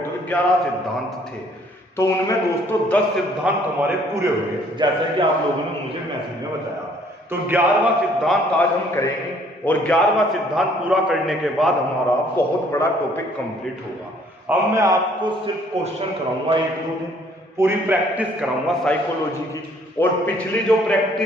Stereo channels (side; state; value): both; normal; correlation 0.61